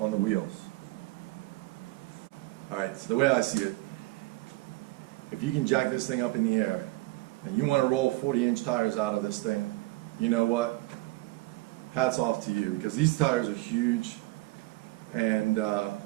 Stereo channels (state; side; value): quieter; left; 20.5 dB